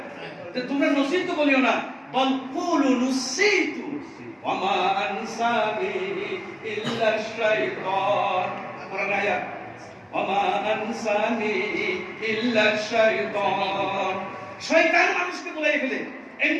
তোমরা নসিতু বলিও না বল কুলু নসিতু ওয়া মা আনসানি ইল্লা শাইতান কোরআন আয়াত ওয়া আনসানি ইল্লা শাইতান শয়তান মানুষকে বলাই ফেলে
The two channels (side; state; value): both; identical; correlation 1.00